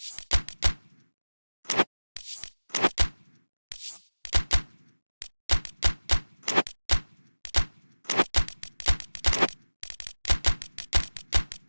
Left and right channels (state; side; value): inverted; both; correlation -1.00